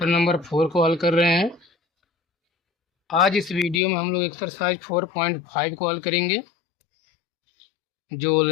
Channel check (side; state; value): right; drops out; at 3.8 s